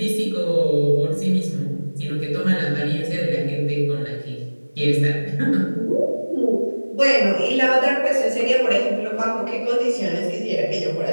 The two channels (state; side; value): inverted; both; correlation -1.00